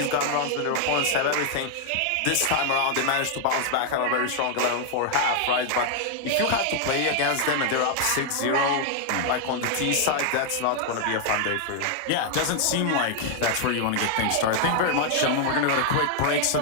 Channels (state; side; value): different; both; correlation 0.00